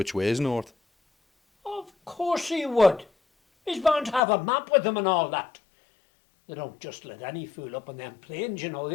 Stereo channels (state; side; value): drops out; right; at 4.2 s